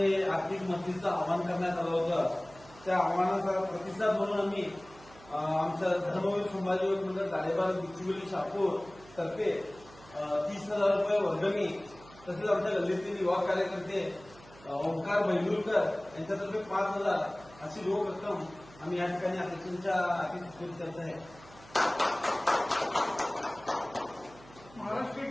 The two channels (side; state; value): right; noise; hum, 22 dB below the sound